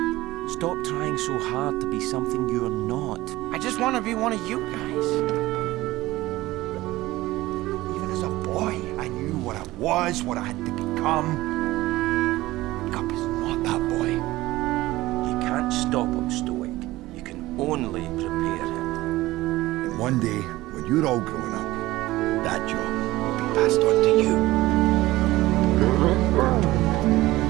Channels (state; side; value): quieter; left; 17.8 dB